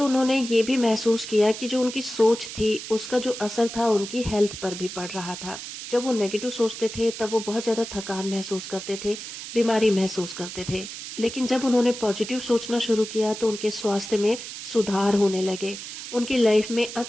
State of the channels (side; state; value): right; noise; hiss, 10 dB below the sound